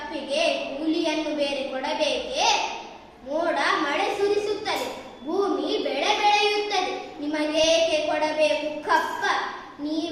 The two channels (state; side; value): identical; both; correlation 1.00